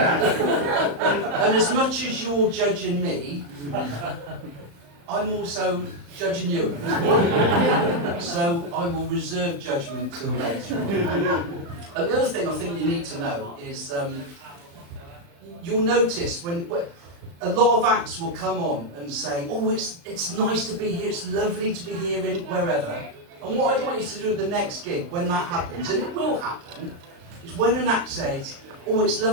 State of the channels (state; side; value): late; left; 35 ms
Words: as much as you're judging me, I'm also judging you. So I will reserve judgment till later on. And the other thing I think you need to know is you'll notice when a lot of acts will come on and say, oh, it's nice to be here, it's lovely to be here in wherever. And what I'd like you to do at the next gig, when that happens, and it will happen, is when an act says, oh, it's